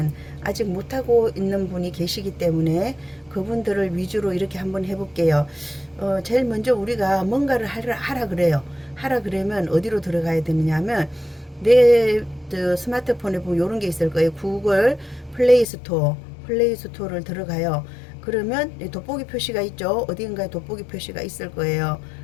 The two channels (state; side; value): drops out; right; at 15.7 s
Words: 아직 못하고 있는 분이 계시기 때문에 그분들을 위주로 이렇게 한번 해볼게요. 제일 먼저 우리가 뭔가를 하라 그래요. 하라 그러면 어디로 들어가야 되느냐 하면 내 스마트폰에 보면 이런 게 있을 거예요. 구글 플레이스토어를 들어가요. 그러면 돋보기 표시가 있죠. 어딘가에 돋보기 표시가 있을 거예요.